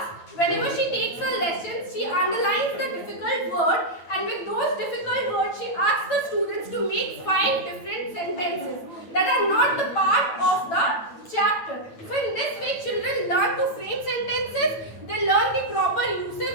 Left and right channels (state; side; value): late; right; 9.0 ms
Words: Whenever she takes her lessons, she underlines the difficult word, and with those difficult words, she asks the students to make 5 different sentences that are not the part of the chapter. So in this way, children learn to frame sentences, they learn the proper uses